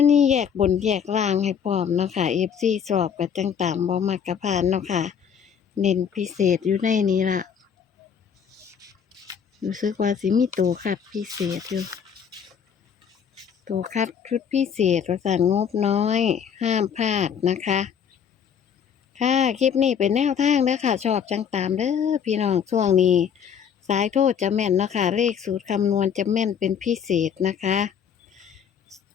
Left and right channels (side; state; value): right; quieter; 7.6 dB